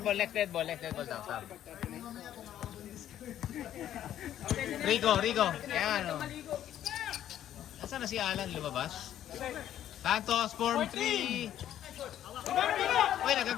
ball. Stop. Rico. Ayan, oh. Nasaan na si Alan? Lumabas? Santos, form 3. Uy,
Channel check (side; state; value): right; quieter; 11.4 dB